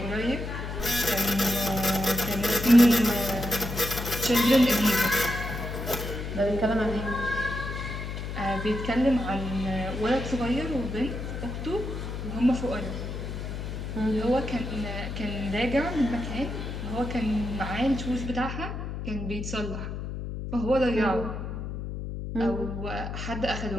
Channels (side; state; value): left; noise; hum, 6 dB below the sound